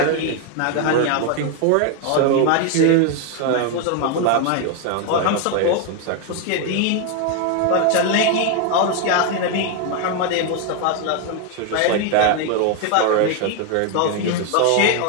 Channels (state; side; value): different; both; correlation 0.01